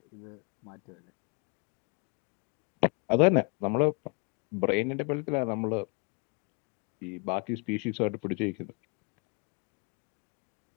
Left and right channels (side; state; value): right; quieter; 32.7 dB